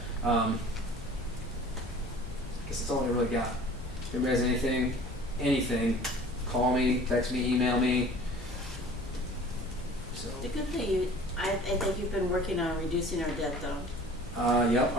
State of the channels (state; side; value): normal; both; correlation 0.46